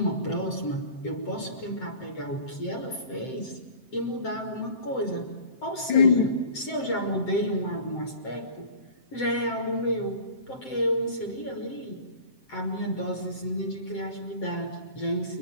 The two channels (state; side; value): late; right; 7.7 ms